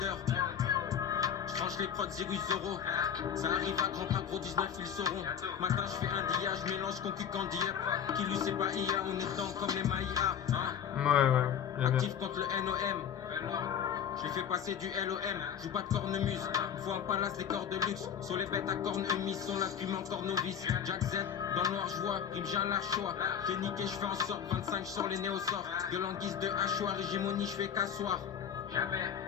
J'tranche les prods 0 euros. Ça arrive à grand pas gros 19 ils sauront. Matin je fais un dia, je mélange concu candy up. Qui lui c'est pas IA, on est dedans comme les Maïa hein. Ouais. Actif contre le NOM. Je lui fais passer du LOM. Joue pas de cornemuse. Faut un palace des corps de luxe. Sur les bêtes à cornes humides sont là depuis encore novice. Jack Z, dans le noir joie, rime j'ai un large choix. J'ai niqué, je fais en sorte 25 sur les néosorts. De l'anguisse de hachoir, hégémonie, je fais qu'asseoir.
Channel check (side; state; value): right; quieter; 8.4 dB